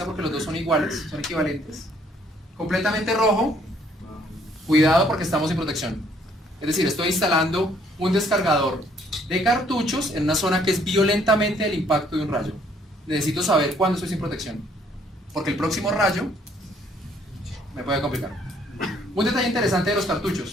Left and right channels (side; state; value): both; normal; correlation 0.64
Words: porque los dos son iguales, son equivalentes. Completamente rojo, cuidado porque estamos sin protección. Es decir, estoy instalando un descargador de cartuchos en una zona que es violentamente el impacto de un rayo. Necesito saber cuándo estoy sin protección, porque el próximo rayo me puede complicar. Un detalle interesante de los